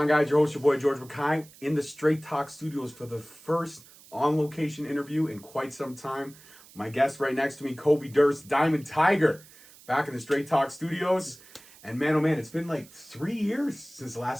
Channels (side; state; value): right; noise; hiss, 23 dB below the sound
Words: guys? Your host, your boy George McKay, in the Straight Talk Studios for the first on-location interview in quite some time. My guest right next to me, Kobe Durst, Diamond Tiger, back in the Straight Talk Studios. And man, oh man, it's been like 3 years since the